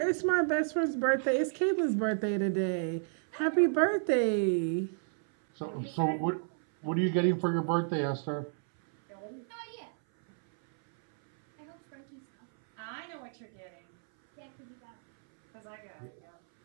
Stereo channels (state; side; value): silent; left; 57 dB below the other